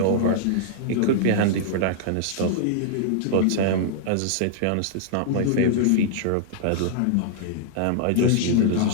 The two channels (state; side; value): different; both; correlation -0.01